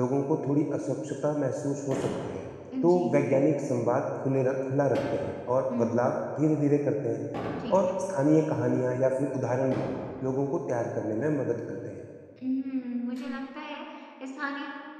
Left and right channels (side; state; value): both; identical; correlation 1.00